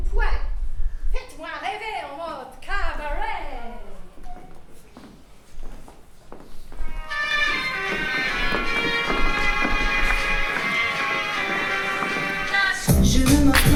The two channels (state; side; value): identical; both; correlation 1.00